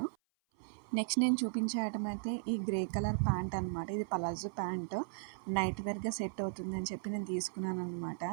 నెక్స్ట్ నేను చూపించే ఐటమ్ అయితే ఈ గ్రే కలర్ ప్యాంట్ అనమాట. ఇది పలాజో ప్యాంట్, నైట్ వేర్గా సెట్ అవుతుంది అని చెప్పి నేను తీసుకున్నాను అనమాట.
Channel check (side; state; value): left; silent; 53 dB below the other